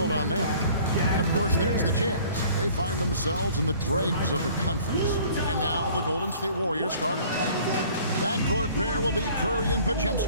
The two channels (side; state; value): both; inverted; correlation -0.51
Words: on that. And, of course, there's the Jazz. They find themselves in the dregs of the conference. And now the Golden State Warriors starters. Backcourt pair will be Curry and